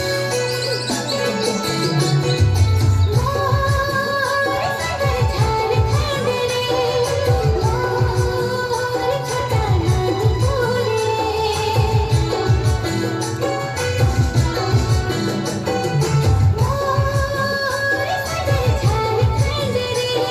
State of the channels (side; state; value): both; identical; correlation 1.00